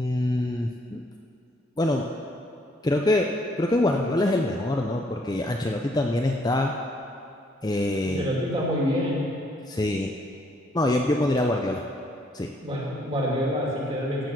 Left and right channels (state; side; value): normal; both; correlation 0.67